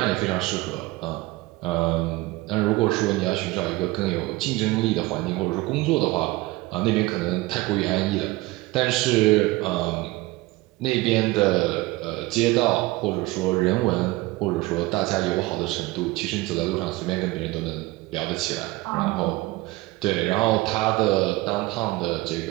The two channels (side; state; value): left; quieter; 20.5 dB